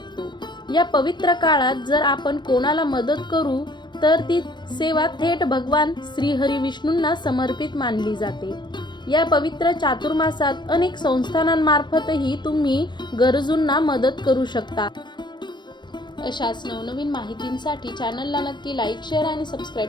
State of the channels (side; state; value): right; late; 0.22 ms